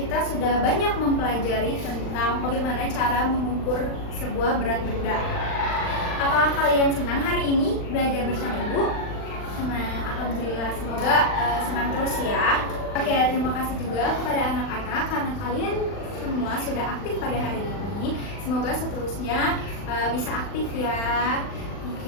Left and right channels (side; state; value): right; late; 39 ms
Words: sudah banyak mempelajari tentang bagaimana cara mengukur sebuah berat benda. Apakah kalian senang hari ini belajar bersama Ibu? Senang, alhamdulillah. Semoga senang terus ya. Oke, terima kasih juga kepada anak-anak karena kalian semua sudah aktif pada hari ini. Semoga seterusnya bisa aktif ya.